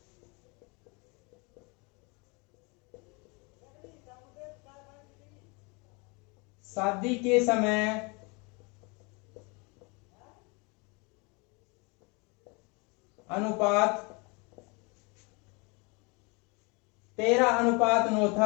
शादी के समय अनुपात 13:9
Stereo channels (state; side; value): quieter; right; 29.8 dB